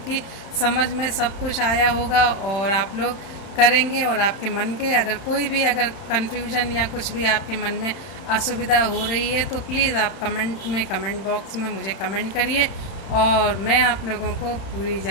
की समझ में सब कुछ आया होगा और आप लोग करेंगे। और आपके मन के अगर कोई भी अगर कन्फ्यूजन या कुछ भी आपके मन में असुविधा हो रही है तो प्लीज़ आप कमेंट बॉक्स में मुझे कमेंट करिए और मैं आप लोगों को पूरी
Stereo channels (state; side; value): late; right; 31 ms